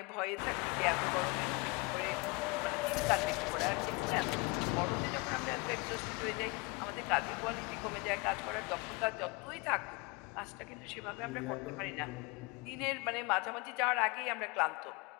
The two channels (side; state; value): right; quieter; 27.7 dB